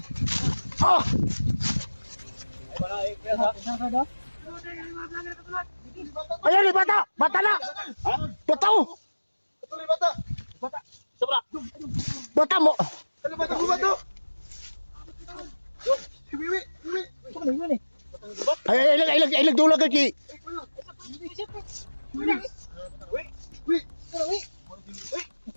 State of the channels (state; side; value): inverted; both; correlation -1.00